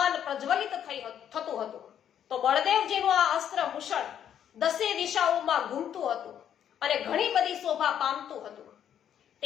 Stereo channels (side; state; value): right; quieter; 9.5 dB